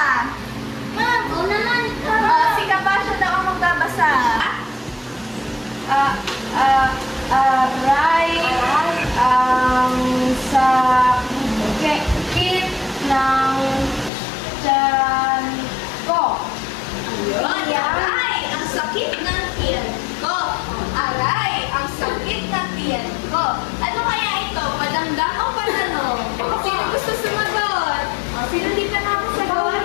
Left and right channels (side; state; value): right; drops out; at 14.1 s